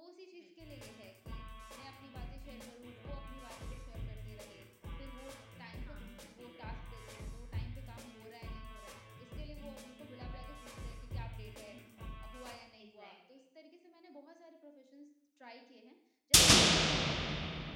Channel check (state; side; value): identical; both; correlation 1.00